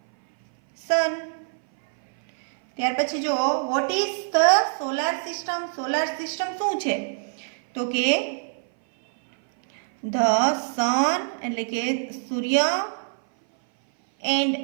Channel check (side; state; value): left; silent; 58 dB below the other